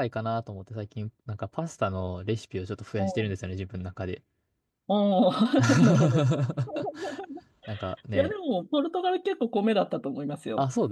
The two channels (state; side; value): identical; both; correlation 1.00